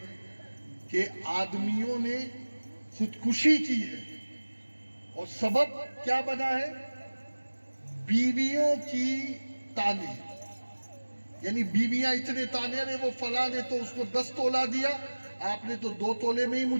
کہ آدمیوں نے خودکشی کی ہے اور سبب کیا بنا ہے، بیویوں کی تانے، یعنی بیویاں اتنے تانے رہے، وہ فلاں نے تو اس کو 10 تولہ دیا، آپ نے تو 2 تولے میں ہی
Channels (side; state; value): both; inverted; correlation -1.00